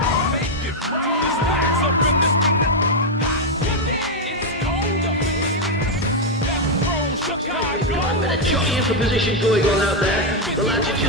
For position going on out there. The lads are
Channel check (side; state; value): both; normal; correlation 0.02